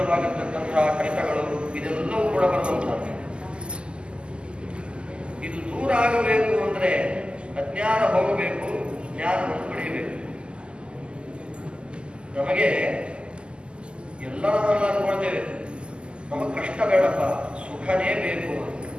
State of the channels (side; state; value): left; late; 0.050 ms